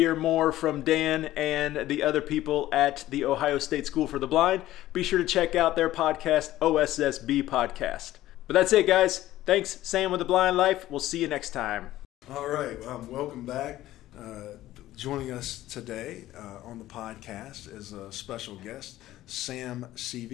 more from Dan and the other people at the Ohio State School for the Blind, be sure to check out their podcast, OSSB Podcast. But that's it, guys. Thanks, Sam with The Blind Life. We'll see you next time. All right, welcome back. Joining us today on the podcast is a special guest, Sam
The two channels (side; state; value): right; quieter; 14.8 dB